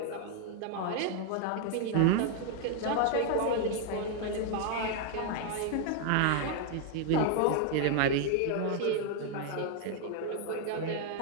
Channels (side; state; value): both; different; correlation 0.00